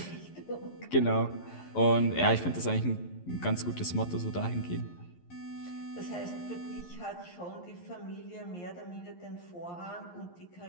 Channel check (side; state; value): right; late; 11 ms